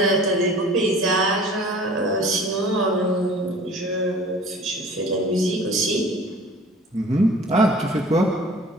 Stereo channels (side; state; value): both; normal; correlation 0.46